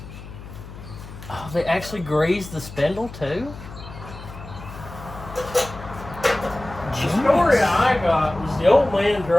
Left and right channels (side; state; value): left; noise; hum, 14 dB below the sound